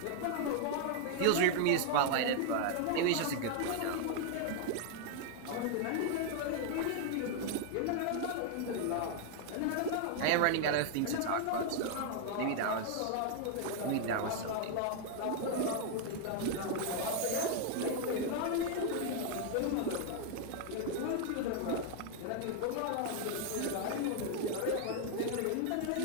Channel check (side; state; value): both; different; correlation 0.00